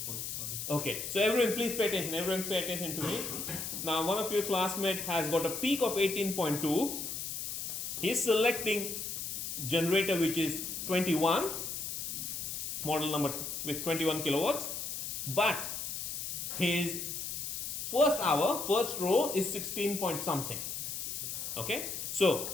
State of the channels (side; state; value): left; noise; hiss, 4 dB below the sound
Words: Okay, so everyone please pay attention. Everyone pay attention to me. Now one of your classmates has got a peak of 18.2. He's selecting generator which is 21, model number with 21 kilowatts, but his first hour, first row is 16 point something. Okay,